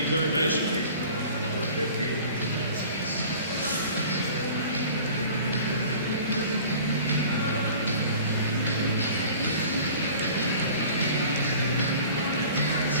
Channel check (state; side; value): inverted; both; correlation -0.44